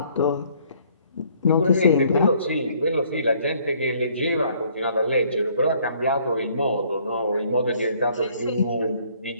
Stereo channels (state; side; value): inverted; both; correlation -0.62